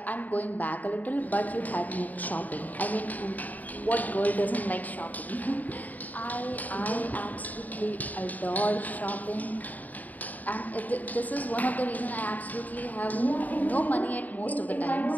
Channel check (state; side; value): late; right; 0.079 ms